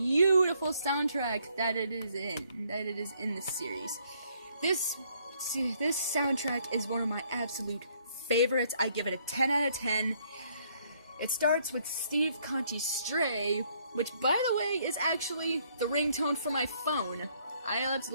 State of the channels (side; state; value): both; inverted; correlation -0.67